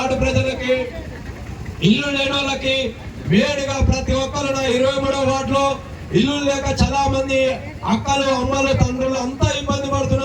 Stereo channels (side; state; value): both; identical; correlation 1.00